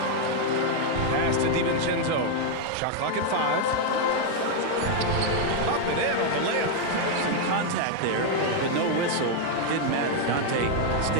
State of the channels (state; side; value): different; both; correlation 0.00